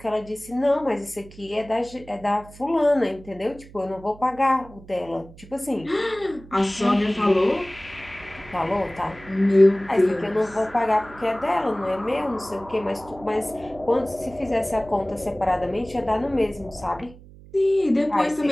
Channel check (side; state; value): right; noise; hum, 20 dB below the sound